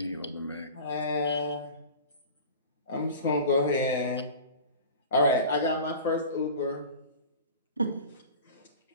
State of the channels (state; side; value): inverted; both; correlation -0.37